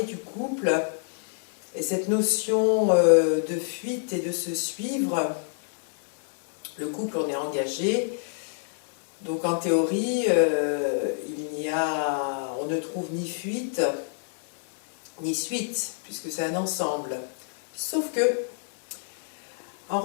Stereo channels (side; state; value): right; silent; 60 dB below the other